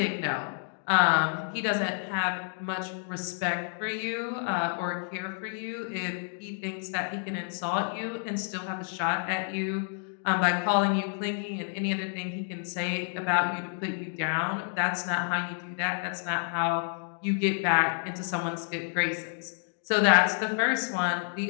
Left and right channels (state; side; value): silent; right; 58 dB below the other